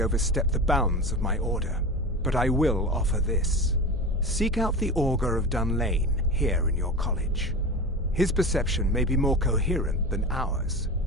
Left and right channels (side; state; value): both; normal; correlation 0.28